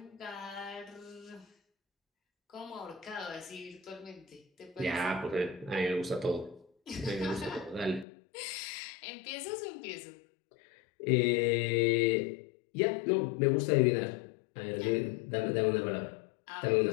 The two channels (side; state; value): right; drops out; at 8.1 s